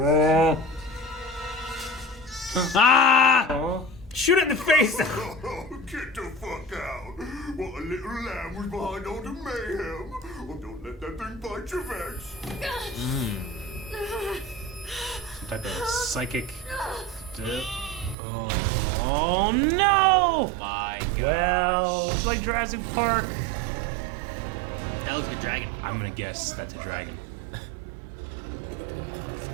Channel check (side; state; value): left; drops out; at 18.2 s